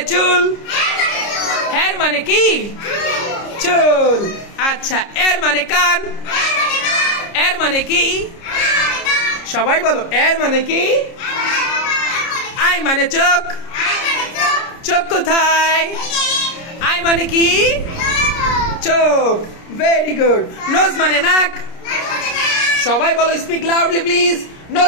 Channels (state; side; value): late; right; 30 ms